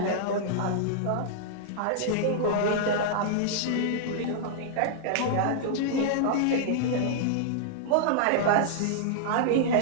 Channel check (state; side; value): different; both; correlation -0.02